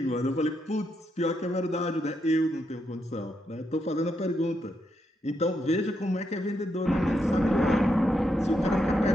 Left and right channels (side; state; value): both; normal; correlation 0.81